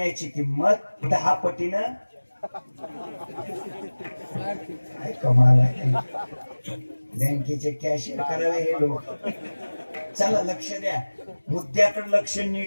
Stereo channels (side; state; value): both; inverted; correlation -1.00